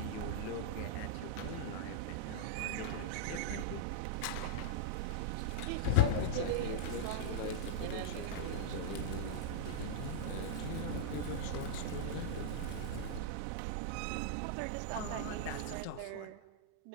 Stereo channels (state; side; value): different; both; correlation -0.02